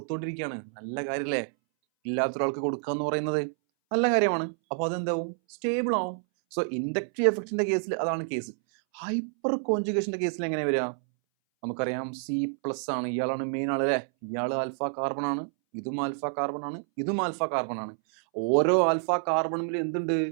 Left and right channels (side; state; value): left; silent; 59 dB below the other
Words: നല്ല കാര്യമല്ലേ? ഇല്ലാത്തൊരാൾക്ക് കൊടുക്കുക എന്ന് പറയുന്നത് നല്ല കാര്യമാണ്. അപ്പോൾ അതെന്താവും? സ്റ്റേബിൾ ആവും. സോ ഇൻഡക്റ്റീവ് എഫക്റ്റിന്റെ കേസിൽ അതാണ് കേസ്. ഹൈപ്പർ കോൺജുഗേഷന്റെ കേസിൽ എങ്ങനെ വരിക? നമുക്കറിയാം C+ ആണ്, ഇയാളാണ് മെയിൻ ആള് അല്ലേ? ഇയാൾ ആൽഫ കാർബൺ ആണ്, ഇതും ആൽഫ കാർബൺ ആണ്, ഇതും ആൽഫ കാർബൺ ആണ്. ഓരോ ആൽഫ കാർബണിൽ എന്തുണ്ട്?